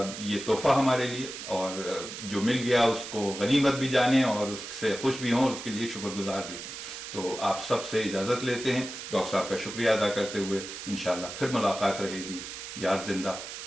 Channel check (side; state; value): right; noise; hiss, 9 dB below the sound